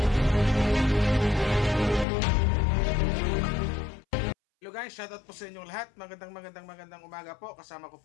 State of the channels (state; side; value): drops out; right; at 2.1 s